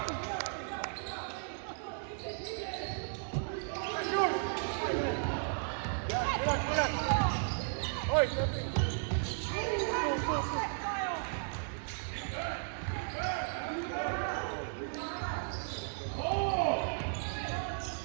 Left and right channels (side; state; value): left; silent; digital silence